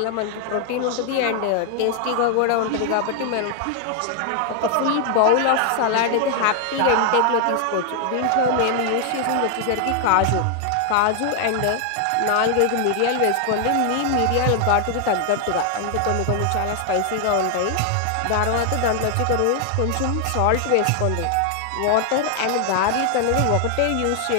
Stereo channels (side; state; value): both; different; correlation 0.00